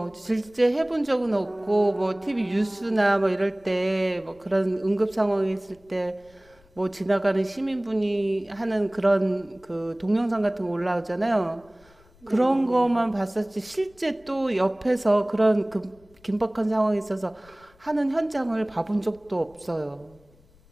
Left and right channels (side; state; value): left; noise; rumble, 29 dB below the sound